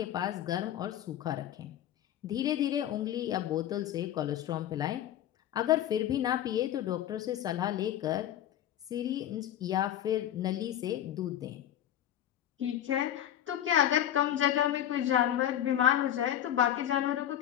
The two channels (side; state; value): right; quieter; 11.3 dB